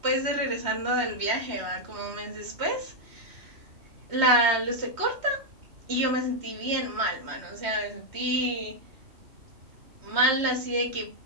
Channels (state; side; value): late; left; 3.1 ms